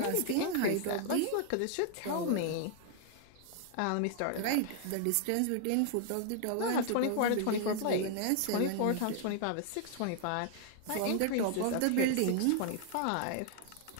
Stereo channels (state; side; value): different; both; correlation 0.00